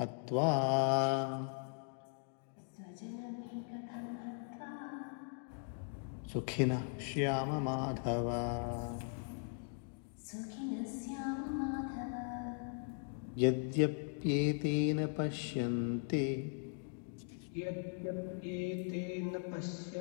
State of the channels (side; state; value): right; silent; 52 dB below the other